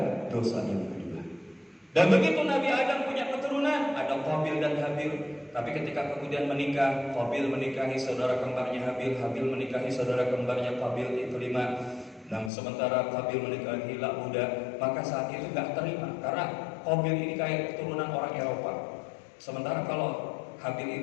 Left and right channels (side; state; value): right; drops out; at 12.5 s